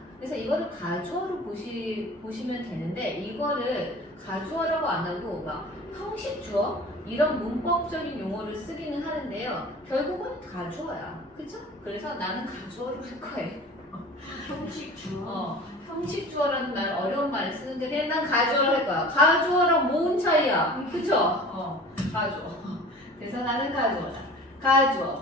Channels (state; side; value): normal; both; correlation 0.42